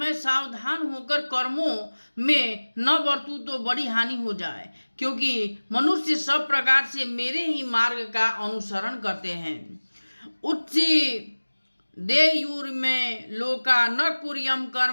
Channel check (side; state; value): both; inverted; correlation -1.00